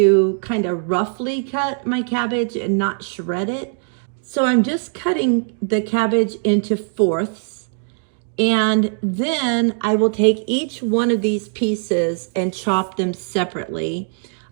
kind of roughly cut my cabbage and not shred it. So I'm just cutting the cabbage into fourths, and then I will take each one of these pieces and chop them separately.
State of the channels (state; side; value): silent; left; 58 dB below the other